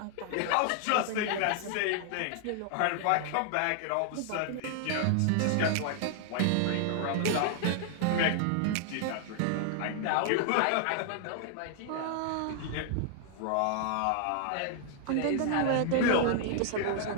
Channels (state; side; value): different; both; correlation 0.00